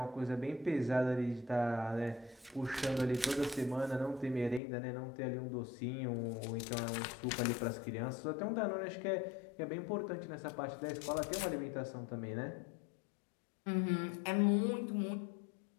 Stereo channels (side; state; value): right; drops out; at 4.6 s